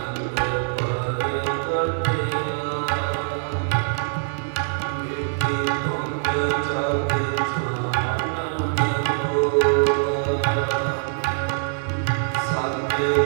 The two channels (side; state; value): left; silent; 63 dB below the other